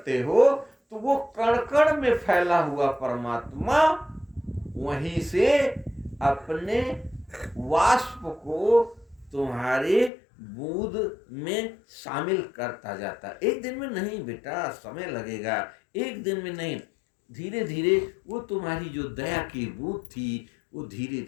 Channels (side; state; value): right; drops out; at 10.1 s